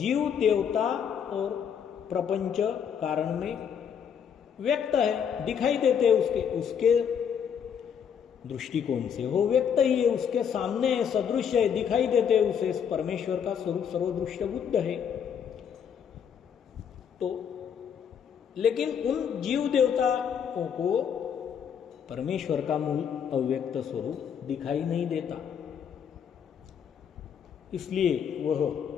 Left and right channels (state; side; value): quieter; right; 7.8 dB